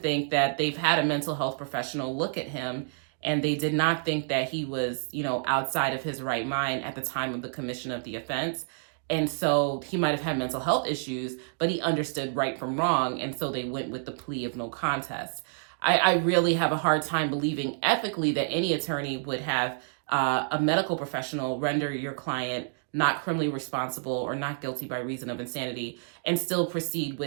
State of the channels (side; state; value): left; silent; digital silence